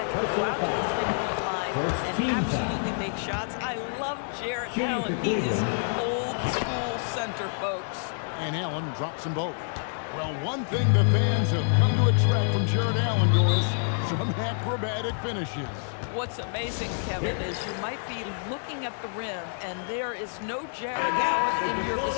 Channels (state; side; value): silent; right; digital silence